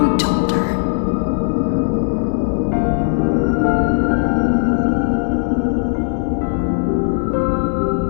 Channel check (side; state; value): right; silent; digital silence